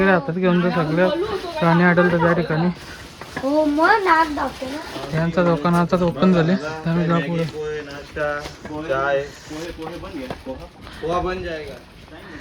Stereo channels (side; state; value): both; identical; correlation 1.00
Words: हातात घेऊन जर सगळं प्राणी आढळतं त्या ठिकाणी. यांचा दुकानाचा ओपन झाले त्यामुळे जा पुढे.